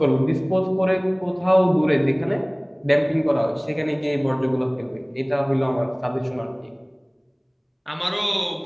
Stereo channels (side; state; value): both; identical; correlation 1.00